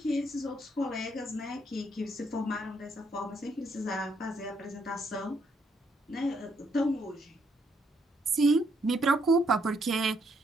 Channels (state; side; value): normal; both; correlation 0.73